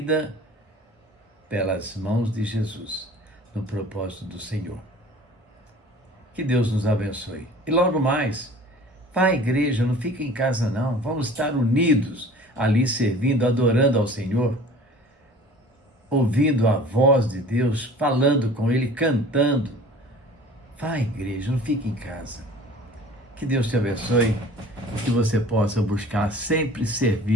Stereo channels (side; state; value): both; normal; correlation 0.45